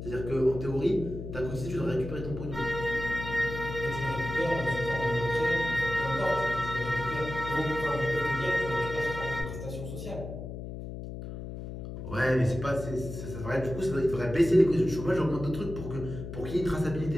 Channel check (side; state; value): left; noise; hum, 8 dB below the sound